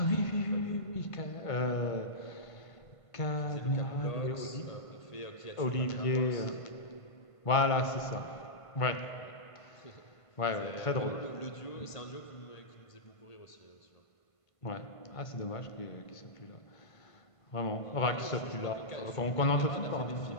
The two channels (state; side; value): late; right; 1.5 ms